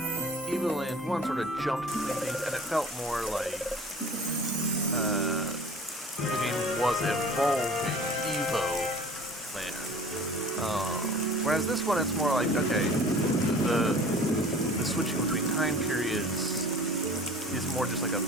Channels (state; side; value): normal; both; correlation 0.45